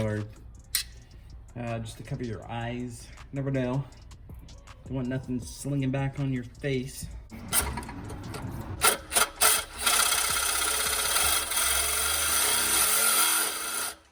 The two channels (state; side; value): identical; both; correlation 1.00